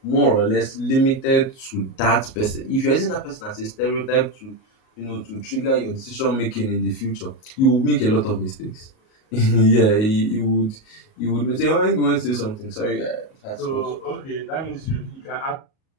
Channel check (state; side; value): late; right; 38 ms